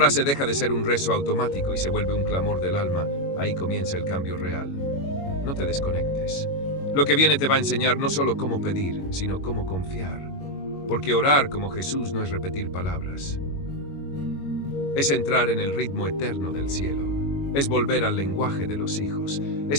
deja de ser un rezo automático y se vuelve un clamor del alma, ahí comienza el cambio real. No te desconectes. Lo que viene te va a enseñar no solo cómo pedir, sino cómo confiar. Porque orar como Jesús no es repetir palabras. Es entrar en el ritmo eterno del cielo. Es volver al lenguaje de los hijos.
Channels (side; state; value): right; late; 21 ms